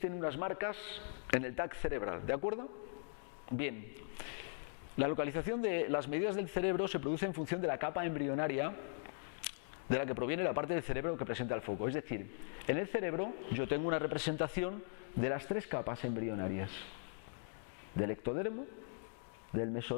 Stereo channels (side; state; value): right; silent; digital silence